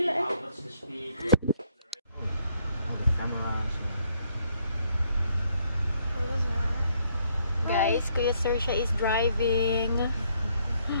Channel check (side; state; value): both; inverted; correlation -0.70